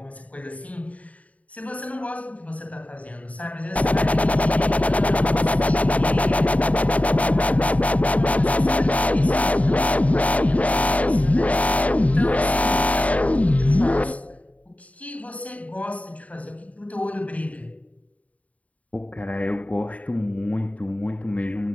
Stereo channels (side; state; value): right; late; 0.069 ms